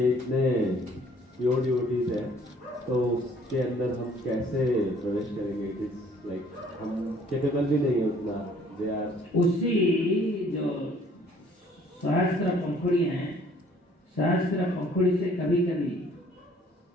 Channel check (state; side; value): normal; both; correlation 0.58